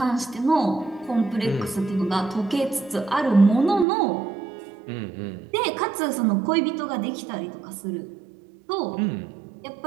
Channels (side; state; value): left; drops out; at 3.9 s